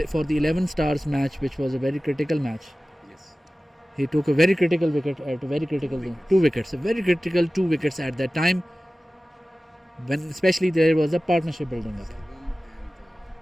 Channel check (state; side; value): normal; both; correlation 0.97